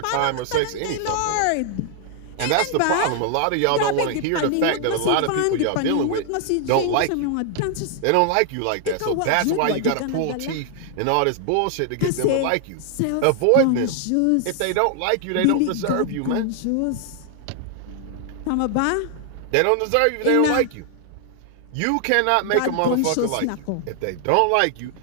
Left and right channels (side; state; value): both; different; correlation 0.00